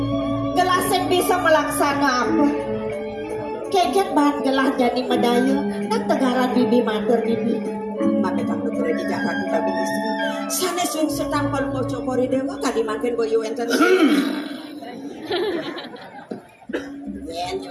gelah sen bisa melaksana apa keket bahan gelah jadi medaya dan tegaran bibi matur bibi maka tak betul di Jakarta babi istri sana sungsut tanpa lu cokori dewa kadi makin boyo enten yen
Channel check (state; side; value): identical; both; correlation 1.00